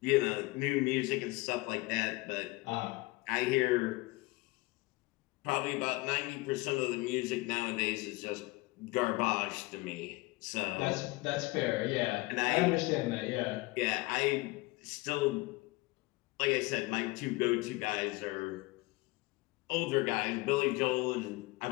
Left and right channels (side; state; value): right; quieter; 22.4 dB